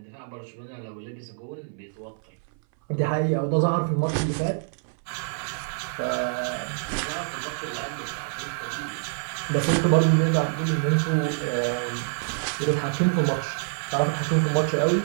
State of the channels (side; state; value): left; silent; 61 dB below the other